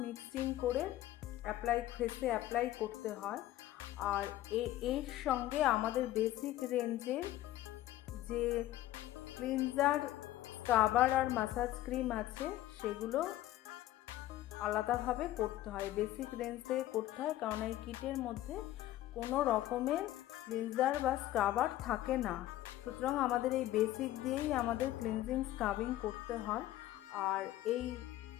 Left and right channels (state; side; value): quieter; right; 14.6 dB